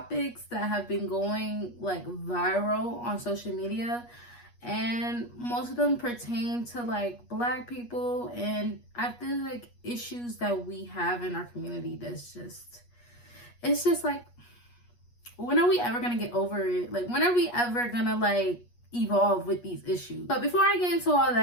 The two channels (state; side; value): late; right; 8.3 ms